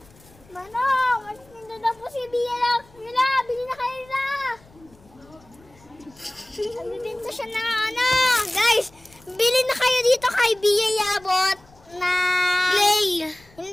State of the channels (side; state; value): left; noise; rumble, 27 dB below the sound